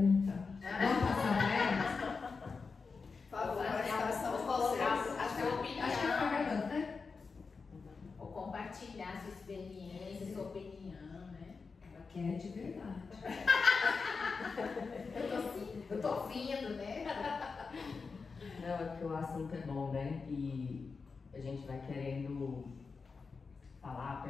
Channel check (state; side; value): quieter; right; 4.8 dB